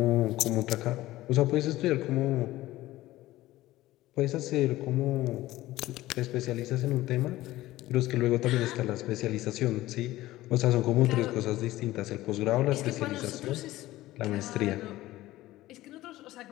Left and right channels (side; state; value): right; quieter; 16.6 dB